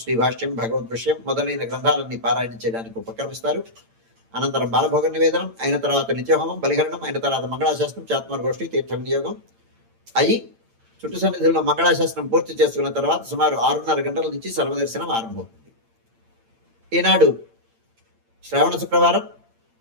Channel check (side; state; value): left; late; 8.8 ms